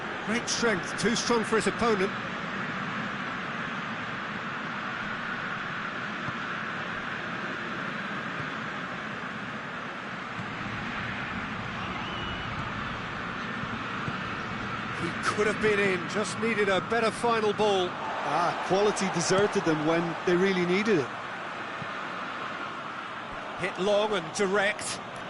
Great strength, too strong for his opponent. He could have been in, just needed a better final ball. Quality deserted them when they really needed it. Hit long and direct.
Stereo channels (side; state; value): both; identical; correlation 1.00